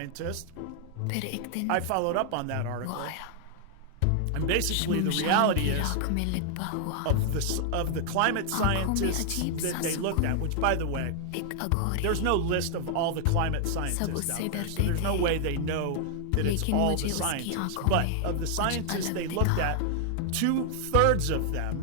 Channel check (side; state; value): both; different; correlation 0.00